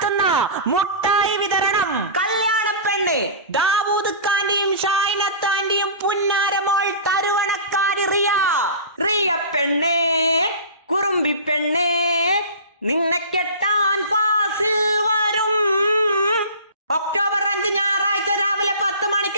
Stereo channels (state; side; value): inverted; both; correlation -0.36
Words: മുട്ടായി വിതരണം. കല്യാണ പെണ്ണ് ദാവൂദ് ഖാന്റെയും ഷായിനത്താന്റെയും പുന്നാരമോൾ തരുവണക്കാരി റിയ പെണ്ണേ, കുറുമ്പി പെണ്ണേ, നിന്നെ കെട്ടാൻ ഫാസിൽ വരും. ഒക്ടോബർ 5 ഞായറാഴ്ച രാവിലെ 10